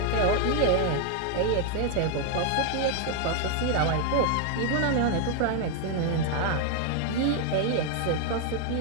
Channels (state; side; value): different; both; correlation 0.00